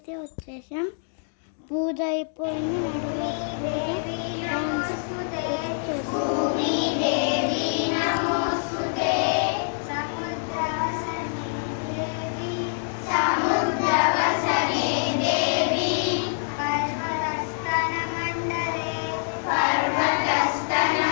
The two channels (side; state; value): right; silent; digital silence